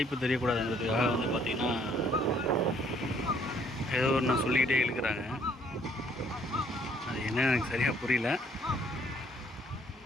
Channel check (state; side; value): normal; both; correlation 0.64